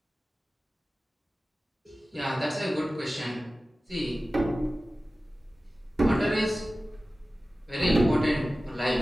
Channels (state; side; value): normal; both; correlation 0.96